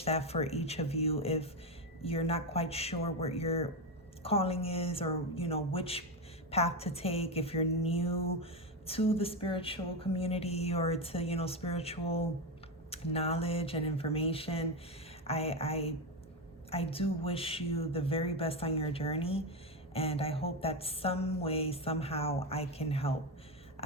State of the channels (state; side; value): normal; both; correlation 0.12